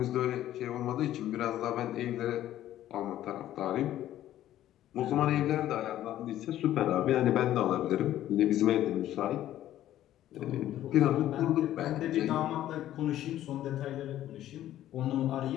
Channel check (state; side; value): quieter; right; 12.8 dB